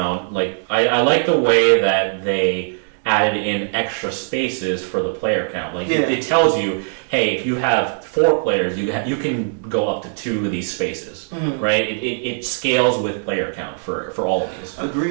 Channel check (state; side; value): silent; left; digital silence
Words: like I like the way that they added in extra spaces for the player count. Like it tells you, hey, if you have 4 players, you can go up to 2 of these spaces, right? It scales with player count for all of these.